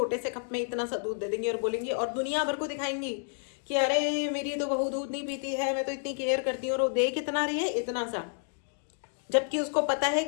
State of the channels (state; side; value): silent; right; digital silence